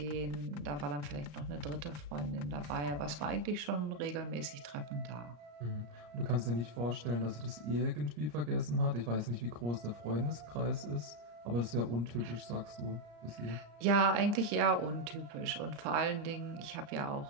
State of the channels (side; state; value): left; late; 35 ms